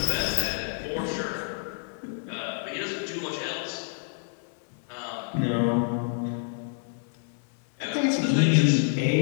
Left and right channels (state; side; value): silent; right; 56 dB below the other